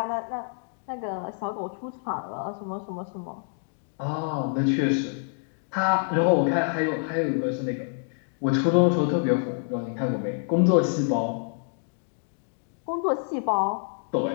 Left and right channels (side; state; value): right; silent; 60 dB below the other